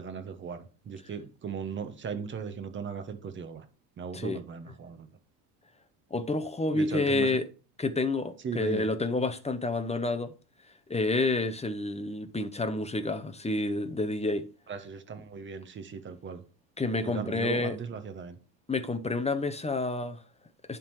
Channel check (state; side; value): normal; both; correlation 0.49